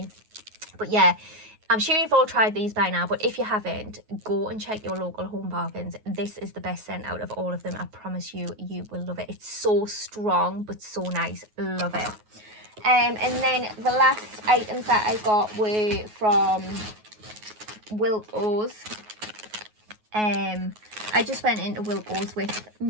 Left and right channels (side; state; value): left; late; 9.4 ms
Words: But yeah, I'm sure you've all tried these by now, but if you haven't, go and check your local Home Bargains. This is the best scent out of all of them. I promise you, you will love it. It's so strong but so nice. Love it. And then the last items that I got were from Wilko's. I just went into Wilko's with